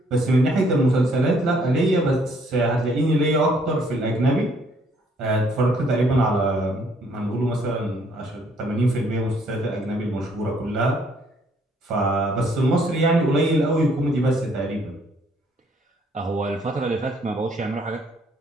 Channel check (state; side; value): normal; both; correlation 0.65